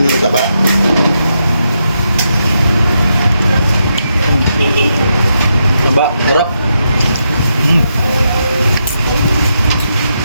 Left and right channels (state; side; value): inverted; both; correlation -0.82